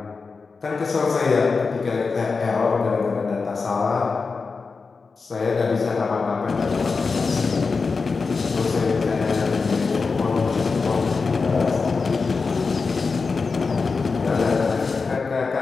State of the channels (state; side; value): quieter; right; 4.6 dB